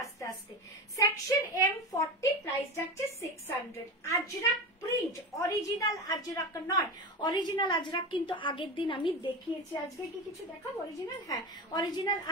আস্তে আস্তে। সেকশন এম 40, প্রাইস যাচ্ছে 600। আজরাক প্রিন্ট, অরিজিনাল আজরাক নয়। অরিজিনাল আজরাক কিন্তু আগের দিন আমি দেখিয়েছি। আজকে কি কিছু দেখাবো অরিজিনাল? হ্যাঁ, অরিজিনাল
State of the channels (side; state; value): both; normal; correlation 0.24